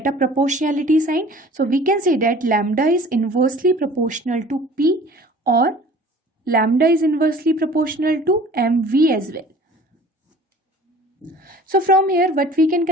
a proportionality sign. So we can say that lambda is inversely proportional to p, or lambda is inversely proportional to mv as well. So from here, what we can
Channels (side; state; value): both; normal; correlation 0.47